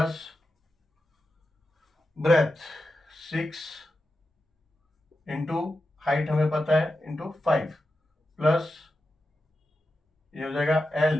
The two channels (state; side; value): normal; both; correlation 0.90